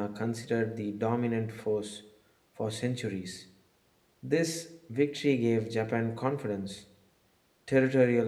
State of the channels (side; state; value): both; identical; correlation 1.00